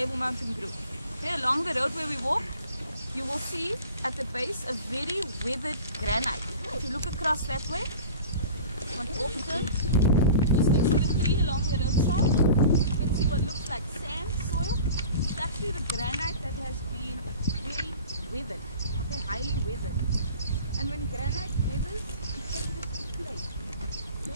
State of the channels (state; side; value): inverted; both; correlation -0.41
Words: Mountain group. Okay, along the road where we walk, you will see at the base a very weathered granite. If you look across that way, one turn, just next to the tree along the roadside, you can see what looks like sand, soil. It's actually the granite that has been very weathered, okay, highly weathered. And when granite weathers, it changes to clay. It